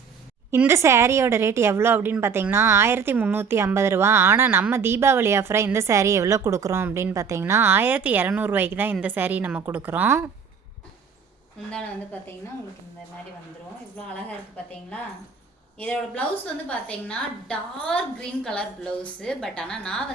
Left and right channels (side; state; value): left; quieter; 6.1 dB